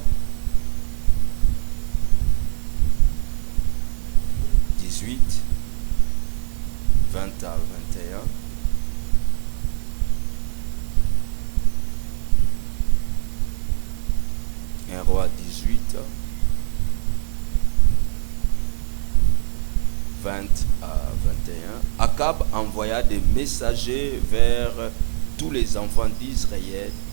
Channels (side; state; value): left; silent; 65 dB below the other